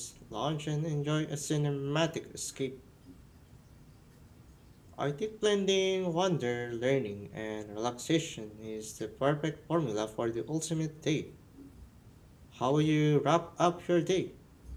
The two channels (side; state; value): both; identical; correlation 1.00